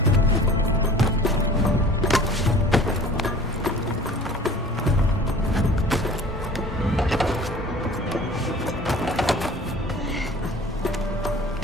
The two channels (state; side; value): normal; both; correlation 0.46